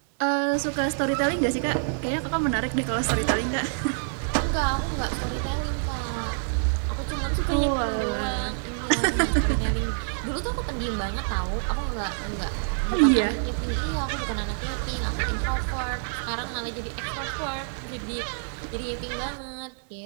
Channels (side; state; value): left; silent; digital silence